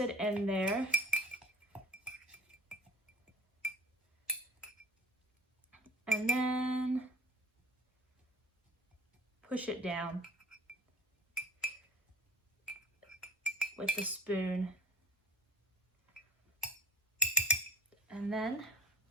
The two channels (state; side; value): normal; both; correlation 0.44